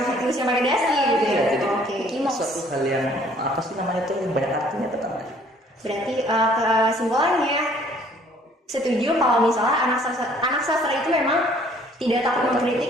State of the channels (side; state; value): both; normal; correlation 0.58